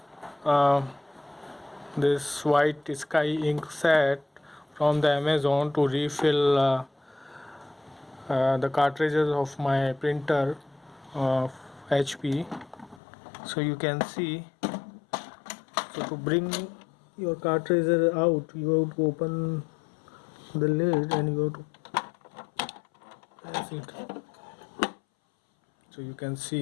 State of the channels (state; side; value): drops out; right; at 13.0 s